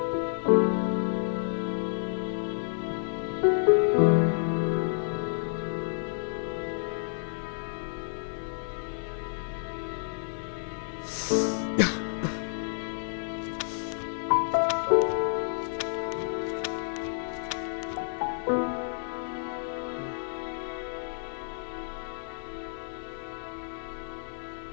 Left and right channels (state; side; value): silent; right; digital silence